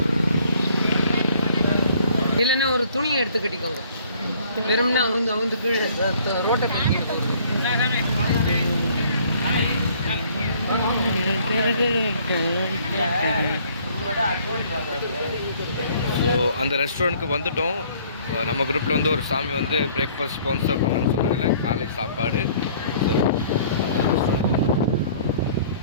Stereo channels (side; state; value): both; inverted; correlation -0.58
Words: இல்லைன்னா ஒரு துணியை எடுத்து கட்டிக்கோங்க. வெறும்னா அவங்க கீழே ரோட்டை ஸோ அந்த ரெஸ்டாரண்ட்டுக்கு வந்துட்டோம். நம்ம குரூப்பில் வந்து ஒரு சாமி வந்து பிரேக்ஃபாஸ்ட் ஸ்பான்சர் பண்ணணும்னு சொன்னாங்கல்ல, காலை சாப்பாடு.